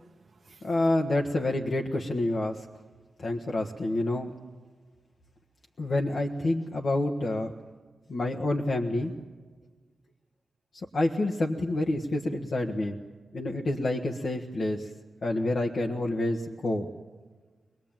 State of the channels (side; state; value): both; normal; correlation 0.92